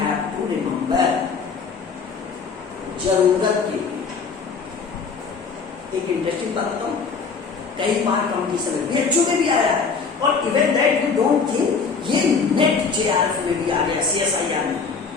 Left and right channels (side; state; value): right; quieter; 5.2 dB